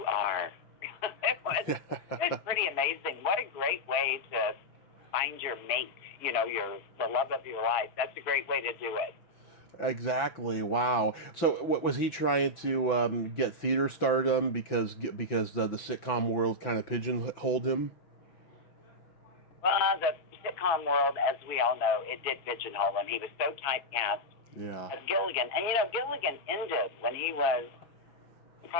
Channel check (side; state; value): right; late; 6.1 ms